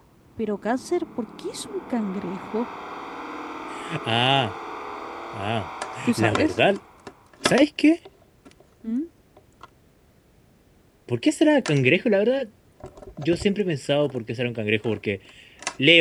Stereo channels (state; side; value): identical; both; correlation 1.00